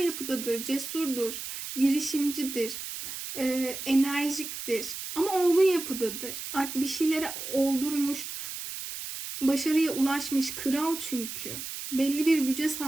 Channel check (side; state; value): right; noise; hiss, 7 dB below the sound